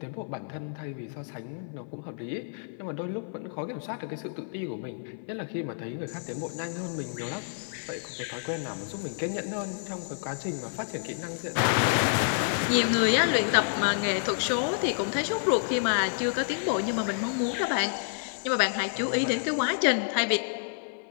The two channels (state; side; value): silent; right; 58 dB below the other